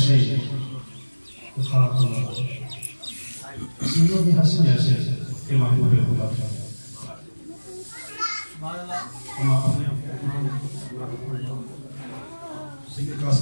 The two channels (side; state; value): both; inverted; correlation -1.00